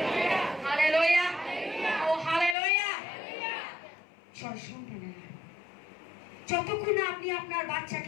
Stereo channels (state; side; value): drops out; right; at 2.6 s